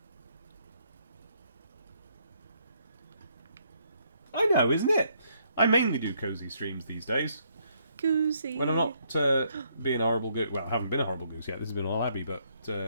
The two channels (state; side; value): inverted; both; correlation -0.71